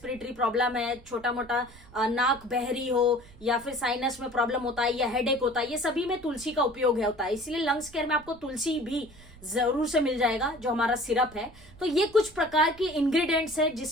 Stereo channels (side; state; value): right; noise; rumble, 22 dB below the sound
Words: प्रॉब्लम है, छोटा मोटा नाक बहरी हो या फिर साइनस में प्रॉब्लम होता है या हेडेक होता है, ये सभी में तुलसी का उपयोग होता है। इसलिए लंग्स केयर में आपको तुलसी भी जरूर से मिल जाएगा जो हमारा सिरप है। तो ये कुछ प्रकार के इंग्रेडिएंट्स है